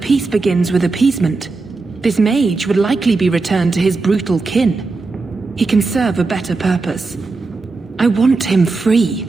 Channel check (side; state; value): left; quieter; 3.8 dB